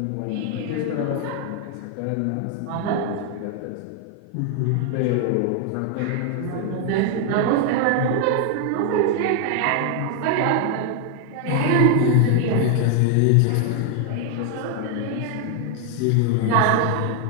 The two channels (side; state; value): both; different; correlation 0.00